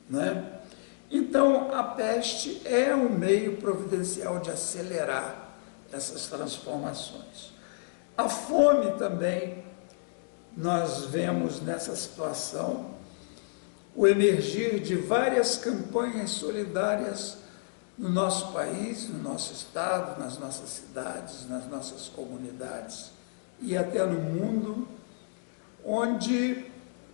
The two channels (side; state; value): right; silent; digital silence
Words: né? Então, a peste é um meio providencial de acelerar essas transformações. A fome também, nós vemos nessa situação o emergir de várias campanhas solidárias no nosso país, no nosso estado, nas nossas cidades, nas nossas comunidades e até no mundo, onde